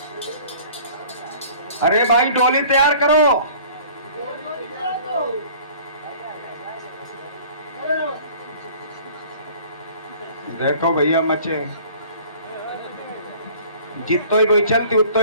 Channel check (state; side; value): inverted; both; correlation -0.49